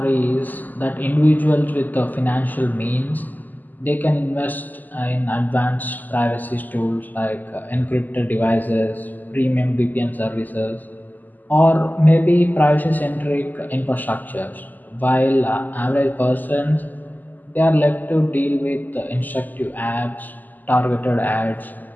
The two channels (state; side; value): late; right; 0.084 ms